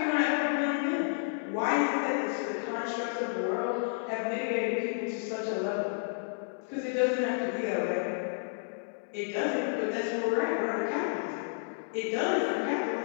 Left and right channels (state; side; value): silent; right; digital silence